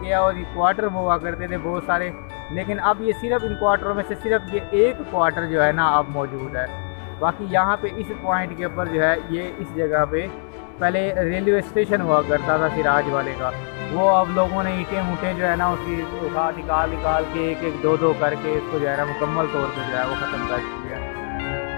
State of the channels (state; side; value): silent; right; 64 dB below the other